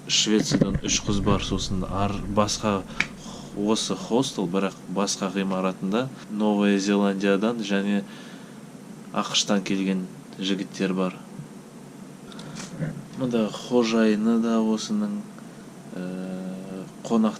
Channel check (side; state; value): both; identical; correlation 1.00